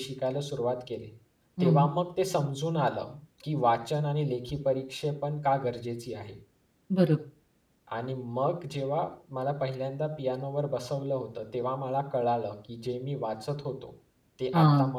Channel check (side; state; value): both; identical; correlation 1.00